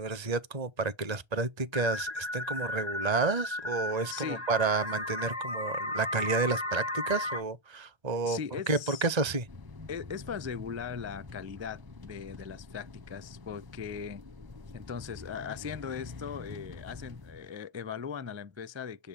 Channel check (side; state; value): left; late; 1.3 ms